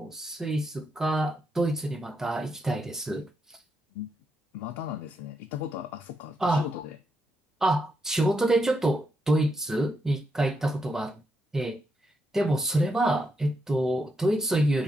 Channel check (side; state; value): both; normal; correlation 0.82